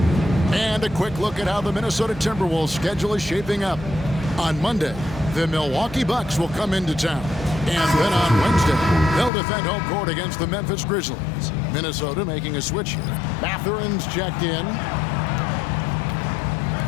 And a quick look at how the Minnesota Timberwolves schedule is shaping up. On Monday, the Milwaukee Bucks will come into town. And then on Wednesday, they'll defend home court against the Memphis Grizzlies. Minnesota making a switch here. Mathurin's checked in.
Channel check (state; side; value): drops out; right; at 9.3 s